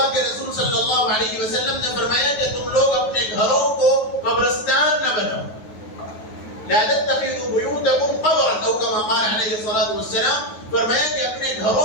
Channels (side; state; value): right; late; 9.4 ms